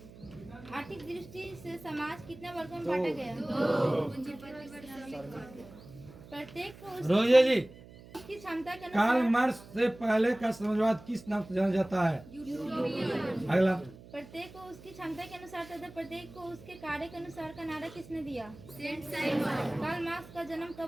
आर्थिक दृष्टि से समाज कितने वर्गों में बांटा गया? प्रत्येक को रोजिए जी, उसकी क्षमता के कार्ल अनुसार मार्क्स से पहले का समाजवाद किस नाम से जाना जाता है? अगला। प्रत्येक को उसकी क्षमता के अनुसार तथा प्रत्येक को उसके कार्य के अनुसार का नारा किसने दिया? कार्ल मार्क्स का जन्म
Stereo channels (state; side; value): noise; right; hum, 19 dB below the sound